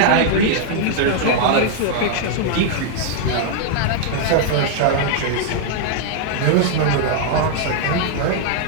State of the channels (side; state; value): both; different; correlation 0.00